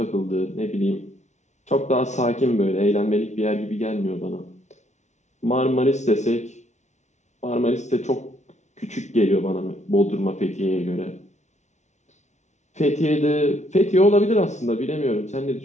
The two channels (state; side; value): late; right; 0.33 ms